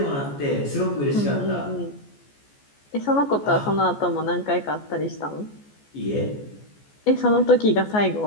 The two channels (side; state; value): right; late; 14 ms